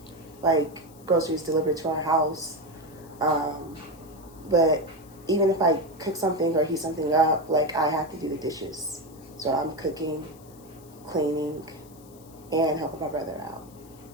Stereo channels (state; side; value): noise; left; hiss, 25 dB below the sound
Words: like groceries delivered to our house. But even if I cook something or heat something up, like I have to do the dishes. So I'm cooking, cleaning, and helping my brother out.